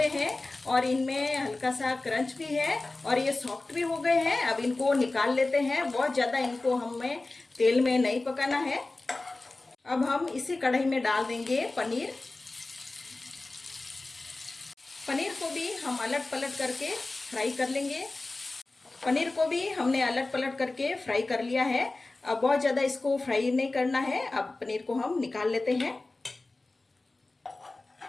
हैं और इनमें हल्का सा क्रंच भी है और ये सॉफ्ट भी हो गए हैं। अब इनको निकाल लेते हैं। बहुत ज़्यादा इनको हमें तेल में नहीं पकाना है। अब हम इसी कढ़ाई में डाल देंगे पनीर। पनीर को भी हम अलट पलट करके फ्राई कर लेंगे। पनीर को भी हमने अलट पलट करके फ्राई कर लिया है। अब बहुत ज़्यादा इसको फ्राई नहीं करना है। अब पनीर को हम निकाल लेते हैं।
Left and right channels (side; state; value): right; quieter; 3.2 dB